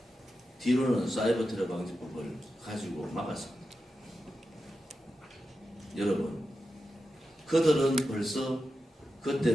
뒤로는 사이버 테러방지법을 가지고 막았습니다. 여러분, 그들은 벌써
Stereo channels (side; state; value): both; normal; correlation 0.90